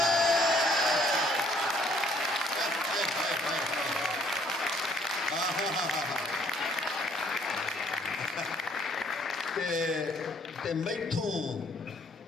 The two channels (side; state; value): both; normal; correlation 0.63